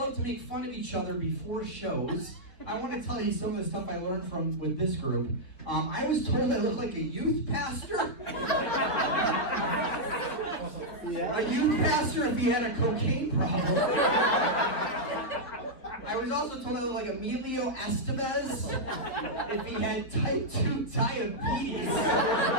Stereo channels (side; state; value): right; late; 3.8 ms